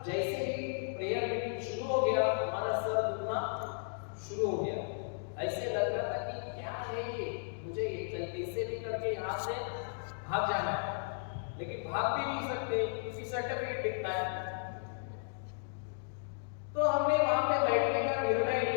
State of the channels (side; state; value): right; silent; digital silence